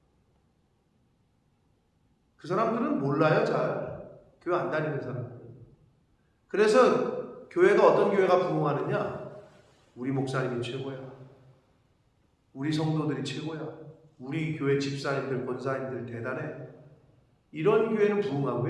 그 사람들은 몰라요, 잘. 교회 안 다니는 사람들. 그래서 교회가 어떤 교회가 부흥하느냐? 우리 목사님이 최고야. 우리 성도들이 최고야. 우리 교회 집사님들, 권사님들 대단해. 이런 교회는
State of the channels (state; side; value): identical; both; correlation 1.00